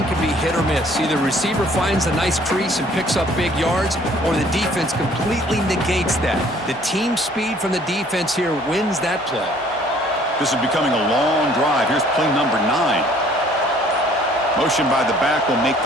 can be hit or miss. Either receiver finds a nice crease and picks up big yards, or the defense completely negates that. The team speed from the defense here wins that play. This is becoming a long drive. Here's play number 9. Motion by the back will make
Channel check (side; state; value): both; normal; correlation 0.58